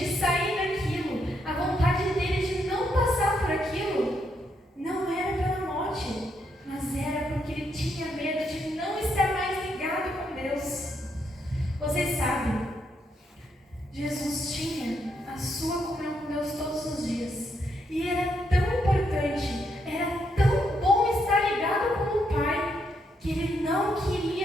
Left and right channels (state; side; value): normal; both; correlation 0.77